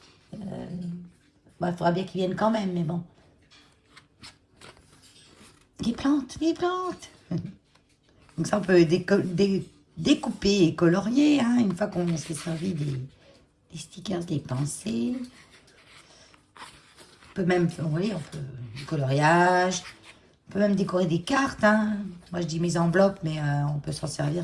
Il faudra bien qu'ils viennent quand même, mais bon. Les plantes, les plantes. Donc ça, on peut découper et colorier, hein, une fois qu'on s'est servi des stickers, des pensées. On peut même, vous voyez, on peut du coloriage. On peut même décorer des cartes. Hein. Moi, je dis mes enveloppes, mais on peut s'en servir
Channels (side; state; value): both; identical; correlation 1.00